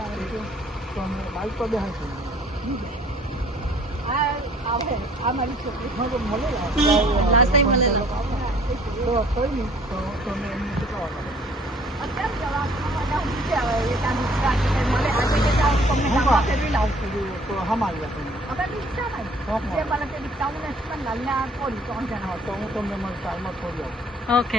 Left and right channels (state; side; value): normal; both; correlation 0.56